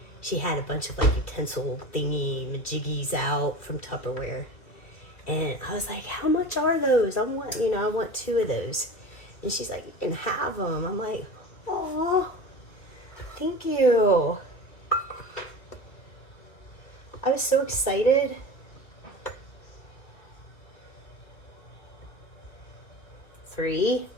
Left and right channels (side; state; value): right; late; 2.3 ms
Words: she had a bunch of like utensil thingy majiggies out from Tupperware. And I was like, how much are those? I want 2 of those. And she's like, you can have them. I'm like, oh, thank you. I was so excited. Three.